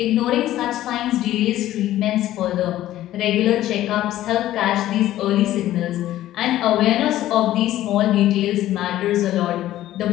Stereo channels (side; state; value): right; quieter; 13.9 dB